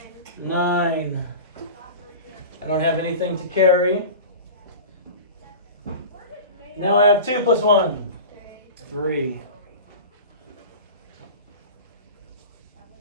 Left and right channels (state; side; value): inverted; both; correlation -0.33